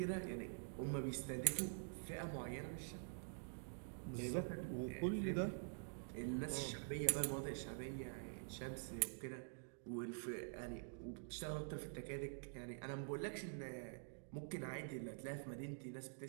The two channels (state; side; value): silent; left; digital silence